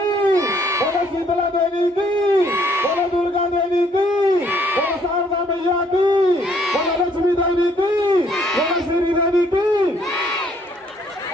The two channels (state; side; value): normal; both; correlation 0.65